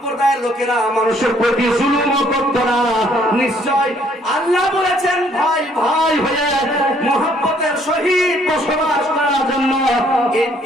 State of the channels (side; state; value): both; normal; correlation 0.64